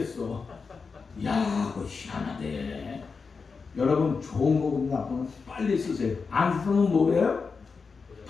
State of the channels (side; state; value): right; quieter; 5.0 dB